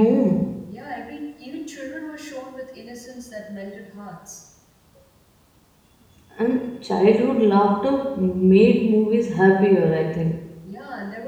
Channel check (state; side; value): identical; both; correlation 1.00